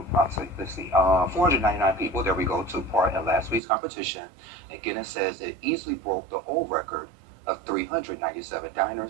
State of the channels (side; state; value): left; drops out; at 3.6 s